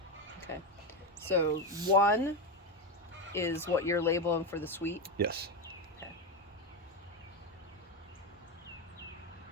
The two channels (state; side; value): normal; both; correlation 0.12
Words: Okay. So 1 is what you're labeling for the sweet? Yes. Okay.